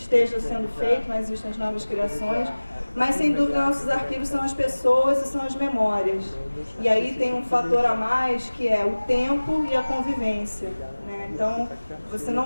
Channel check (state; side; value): inverted; both; correlation -1.00